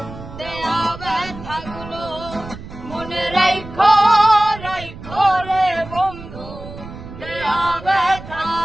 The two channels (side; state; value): right; noise; rumble, 14 dB below the sound